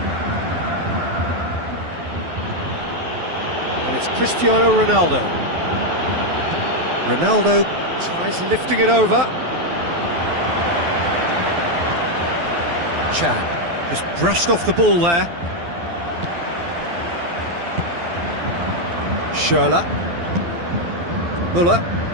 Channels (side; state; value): left; late; 12 ms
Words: And it's Cristiano Ronaldo. Ronaldo tries lifting it over. Chan just brushed off the ball there. Schürrle. Müller.